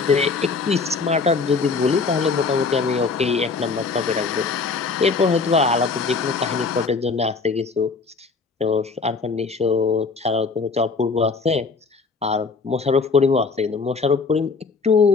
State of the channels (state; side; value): quieter; right; 4.5 dB